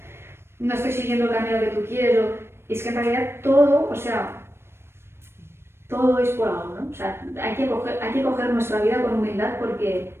no estoy siguiendo el camino que tú quieres, y es que en realidad todo, o sea, todo es por algo, ¿no? O sea, hay que coger nuestra vida con humildad porque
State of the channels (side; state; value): left; late; 0.12 ms